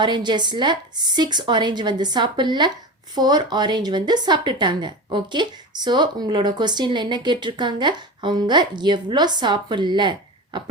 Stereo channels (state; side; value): normal; both; correlation 0.26